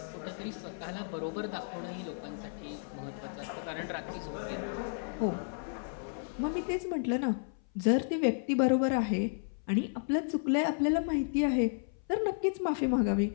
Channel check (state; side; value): silent; right; 56 dB below the other